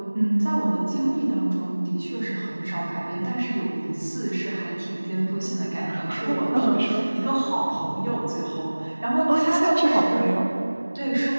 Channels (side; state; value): both; inverted; correlation -1.00